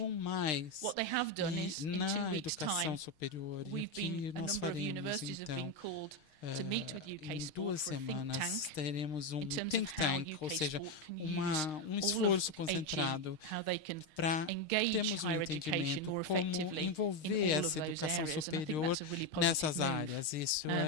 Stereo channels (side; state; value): right; late; 6.5 ms